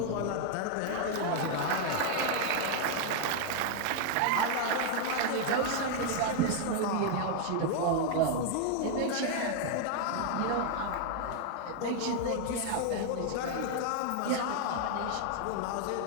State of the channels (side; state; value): both; different; correlation 0.00